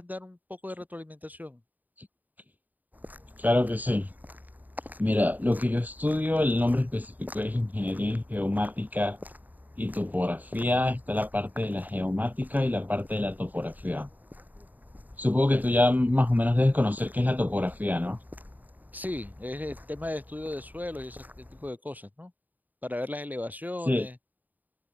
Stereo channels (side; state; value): left; late; 0.083 ms